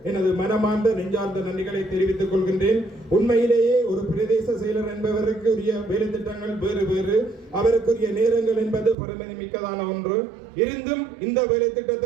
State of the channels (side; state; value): left; drops out; at 9.0 s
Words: எனது மனமார்ந்த நெஞ்சார்ந்த நன்றிகளை தெரிவித்துக் கொள்கின்றேன். உண்மையிலேயே ஒரு பிரதேச செயலர் என்பவருக்கு உரிய வேலை திட்டங்கள் வேறு வேறு, அவருக்குரிய நேரங்கள் என்பது பரமனை மிக்கதான ஒன்று. இருந்தும் இந்த வேலை